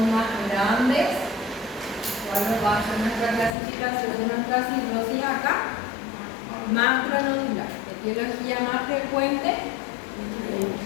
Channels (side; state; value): right; drops out; at 3.6 s